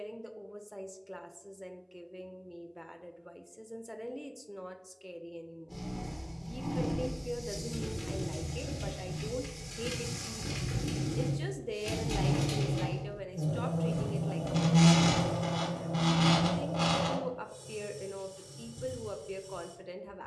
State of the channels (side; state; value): both; identical; correlation 1.00